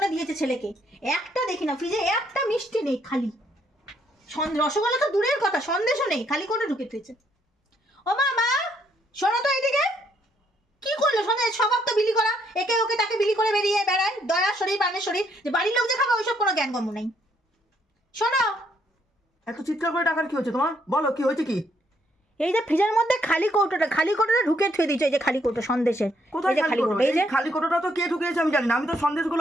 দিয়েছে ছেলেকে। একটা দেখি না ফ্রিজে একটা মিষ্টি নেই, খালি রসগোল্লা তো দূরের কথা, সন্দেশও নেই, খালি কৌটো ঢুকে দিয়েছে। ও মা, মা শোনো তো এইদিকে, কি করলো সন্দেশ? স্বভাব তো বিলি করা, একে ওকে তাকে বিলি করে বেরিয়ে বেড়ায়, দয়ার শরীর প্রাণের শরীর, যে বাড়ির লোক যে খাবে ওইসব কোনো জ্ঞান গম্য নেই। শোনো, এত চিৎকার করে টাকার কি হচ্ছে তোমার? বলো কি হয়েছে কি? এই যে ফ্রিজের মধ্যে খালি কৌটোটা ঢুকে থুয়ে দিয়েছে, এই যে খালি কৌটো সন্দেশের। কোথায় এই যে খালি কৌটো? এই যে এই খালি কৌটোটা তো কে ঢুকিয়েছে আমি জানি না। আমি তো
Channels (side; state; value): both; normal; correlation 0.71